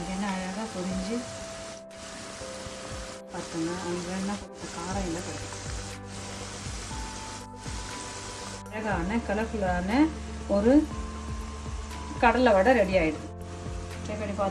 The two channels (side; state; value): both; identical; correlation 1.00